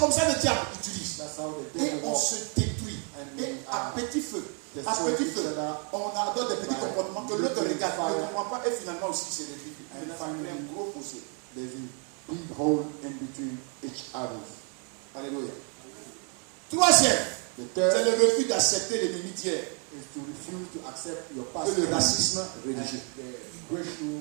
ça que le diable utilise. That's how the Et devil on walks. se détruit. Et à petit feu, on adopte des petits comportements que l'autre regarde, ne comprend pas et finalement aussi c'est réduit. Et là, ça crée un gros fossé. There's a big hole in between each others. Alléluia. Troisième, The c'est third le refus d'accepter l'ennemi d'hier is to refuse to accept your et past le racisme and religieux. the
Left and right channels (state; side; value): quieter; left; 39.7 dB